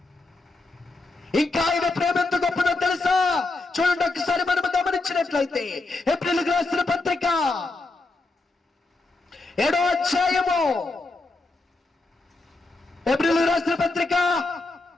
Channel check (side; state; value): right; quieter; 3.3 dB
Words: ఇంకా ఆయన ప్రేమ ఎంత గొప్పదో తెలుసా? చూడండి ఒకసారి మనం గమనించినట్లయితే ఏప్రిల్కి రాసిన పత్రిక 7వ అధ్యాయము, ఏప్రిల్ రాసిన పత్రిక